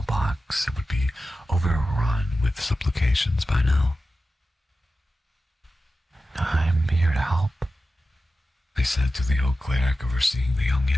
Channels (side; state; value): both; normal; correlation 0.93